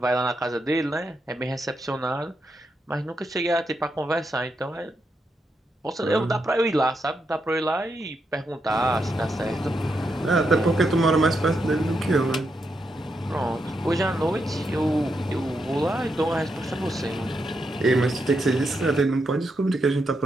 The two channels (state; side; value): normal; both; correlation 0.82